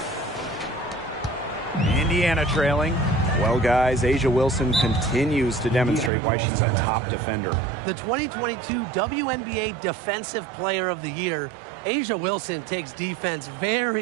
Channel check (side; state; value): left; drops out; at 6.1 s